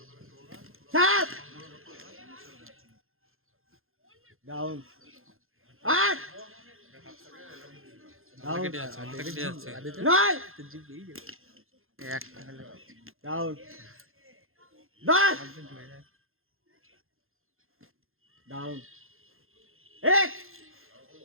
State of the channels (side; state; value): left; late; 0.61 ms